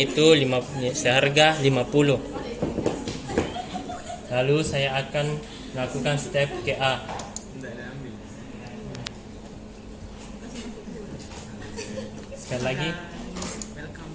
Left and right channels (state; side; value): identical; both; correlation 1.00